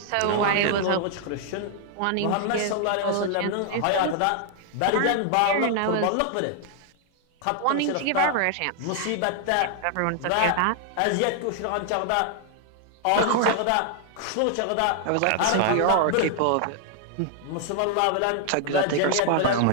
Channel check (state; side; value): different; both; correlation 0.00